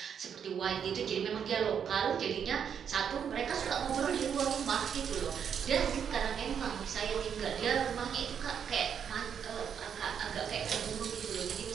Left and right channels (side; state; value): left; quieter; 7.8 dB